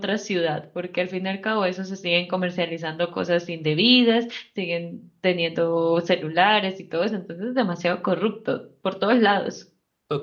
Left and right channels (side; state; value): both; identical; correlation 1.00